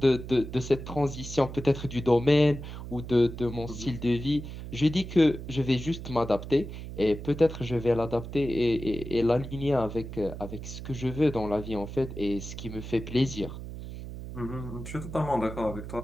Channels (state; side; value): noise; right; hum, 10 dB below the sound